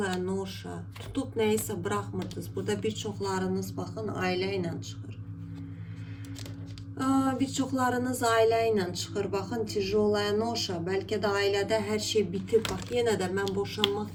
noşa, tutup neyse bırakmırdınız. Burada birçoklarınız bakın aileyle çıxır. Birçoklarınız aileyle çıxır. Bakın tijolaya noşa, belki de ailede her şey bitip. Bak yine de ben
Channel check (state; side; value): identical; both; correlation 1.00